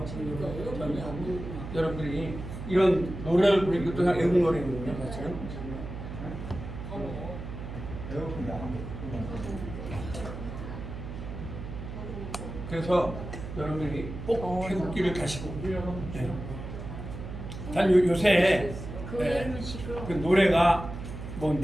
여러분들이 이런 노래를 부르는 것도 그냥 애국 노래거든요, 사실은. 그래서 여러분들이 꼭 태극기를 가시고. 네. 단 요새 그 노래가 뭐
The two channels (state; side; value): noise; right; hum, 9 dB below the sound